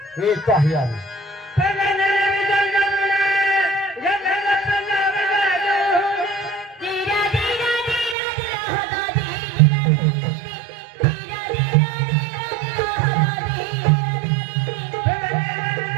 येतो आहे आम्ही.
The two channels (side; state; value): left; drops out; at 8.2 s